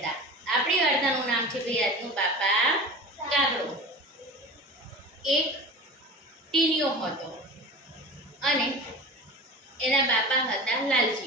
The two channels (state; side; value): normal; both; correlation 0.34